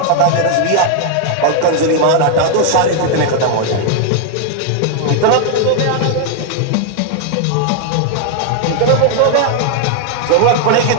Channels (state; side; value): different; both; correlation 0.00